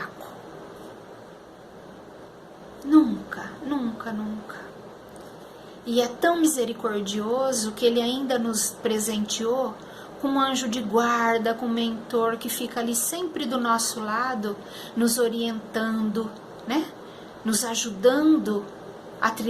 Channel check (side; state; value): both; identical; correlation 1.00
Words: Nunca, nunca, nunca. E é tão misericordioso que Ele ainda nos presenteou com um anjo de guarda, com um mentor que fica ali sempre do nosso lado, nos orientando, né? Nos ajudando a